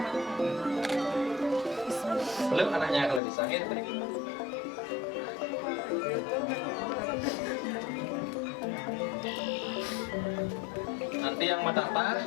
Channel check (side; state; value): right; drops out; at 3.2 s